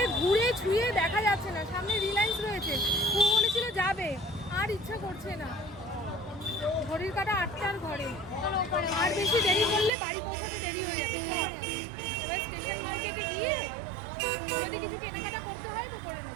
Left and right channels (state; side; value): drops out; left; at 9.9 s